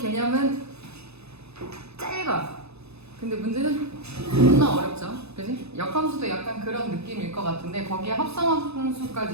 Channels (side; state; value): left; late; 0.79 ms